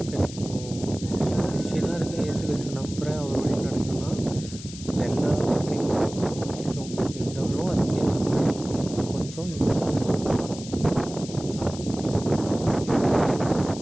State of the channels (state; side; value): noise; left; hiss, 14 dB below the sound